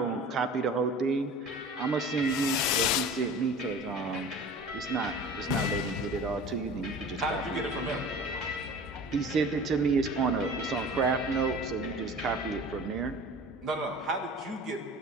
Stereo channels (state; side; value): normal; both; correlation 0.40